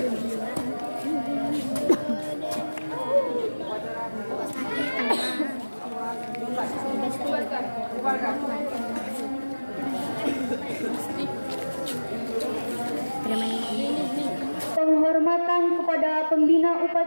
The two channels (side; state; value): both; inverted; correlation -1.00